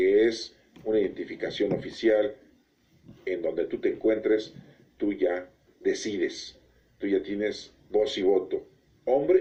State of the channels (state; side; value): identical; both; correlation 1.00